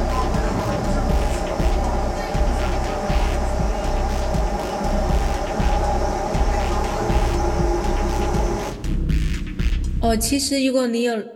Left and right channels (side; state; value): both; identical; correlation 1.00